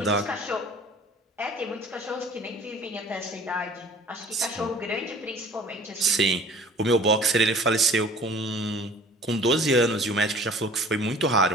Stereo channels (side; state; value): both; normal; correlation 0.48